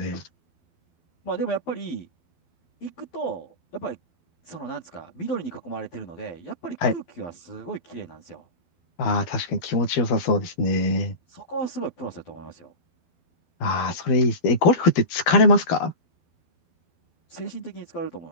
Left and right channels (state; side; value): late; right; 12 ms